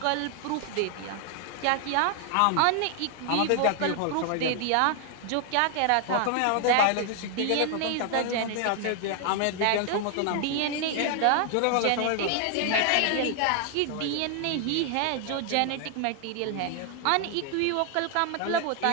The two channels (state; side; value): different; both; correlation 0.00